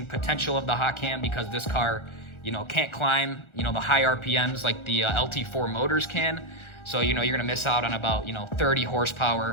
potential of the hot cam because this car, you know, can't climb, you know, the high RPMs like the LT4 motors can. So, you know, you're gonna miss out on about, you know, 30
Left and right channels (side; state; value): right; late; 1.4 ms